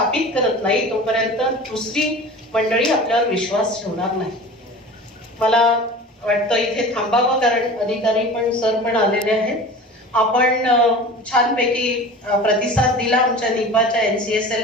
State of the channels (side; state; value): both; normal; correlation 0.37